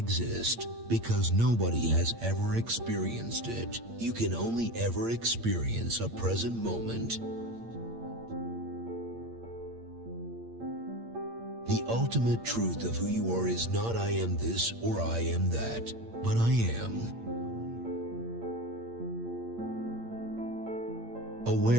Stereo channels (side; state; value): left; late; 8.7 ms